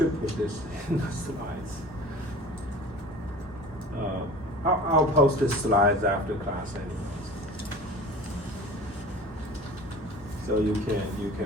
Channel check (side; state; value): both; normal; correlation 0.40